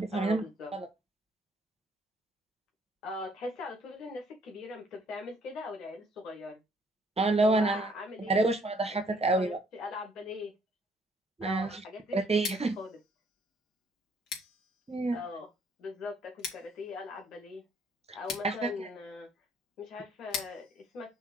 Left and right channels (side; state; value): both; normal; correlation 0.65